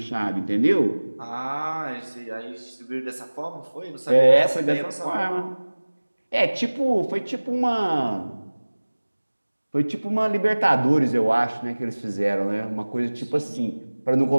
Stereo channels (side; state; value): both; inverted; correlation -1.00